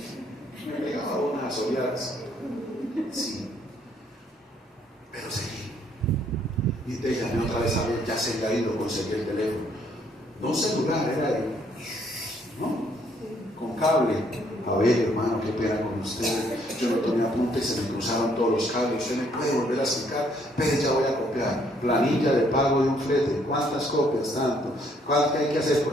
me pegaba unas oleadas, sí, pero seguí. Y te llamé otra vez a ver, ya se había ido, conseguí el teléfono. No un celular, era de, ¿no? Con cable. A ver, hermano, qué pena con usted. Yo no tomé apunte y se me cruzaron todos los cables. Usted me puede volver a explicar, pero ya voy a copiar. Planilla de pago de un flete. ¿Cuántas copias? Tanto. ¿Cuánto hay que hacer?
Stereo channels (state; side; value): normal; both; correlation 0.67